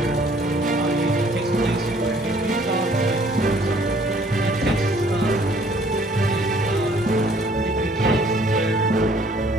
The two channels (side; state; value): both; normal; correlation 0.59